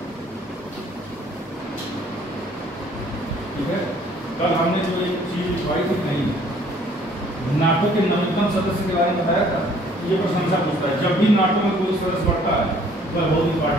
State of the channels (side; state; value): both; normal; correlation 0.58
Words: कल हमने जो एक चीज लिखवाई थी नहीं, नाटो के नवीनतम सदस्य के बारे में बताया था। ये प्रशंसा पूछता है, जब भी नाटो में कोई सदस्य बढ़ता है तो बहुत